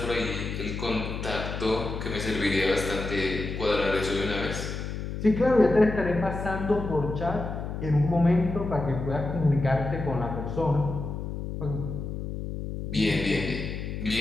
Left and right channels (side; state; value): left; noise; hum, 5 dB below the sound